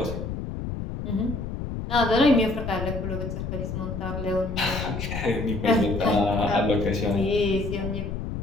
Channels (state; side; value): noise; left; rumble, 5 dB below the sound